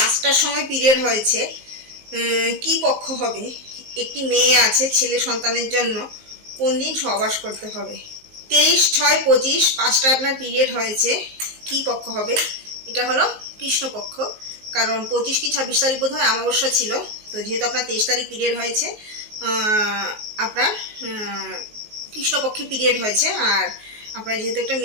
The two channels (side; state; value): left; late; 19 ms